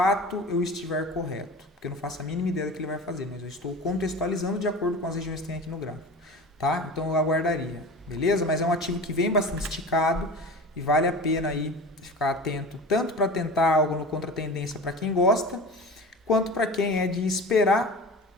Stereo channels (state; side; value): normal; both; correlation 0.34